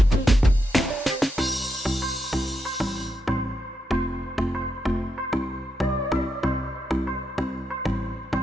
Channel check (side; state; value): both; normal; correlation 0.83